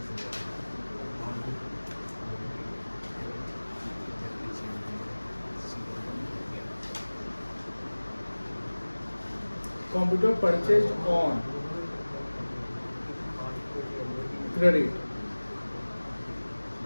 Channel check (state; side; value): inverted; both; correlation -1.00